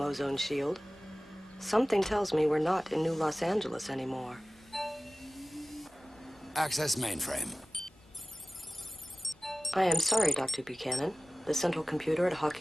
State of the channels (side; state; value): both; normal; correlation 0.97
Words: shield. Something tells me we're not in New Los Angeles anymore. Access mainframe. I am sorry, Dr. Buchanan. The central computer at